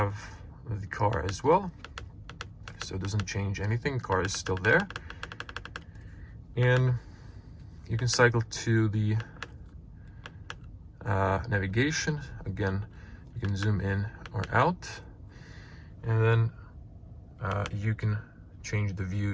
the car as well. So it doesn't change anything, car is still there. And you can cycle to the navigation. Again, you can zoom in or out, and then you can change the view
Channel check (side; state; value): both; identical; correlation 1.00